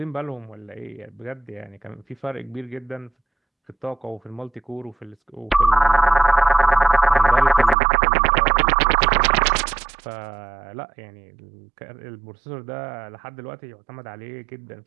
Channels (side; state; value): left; drops out; at 7.8 s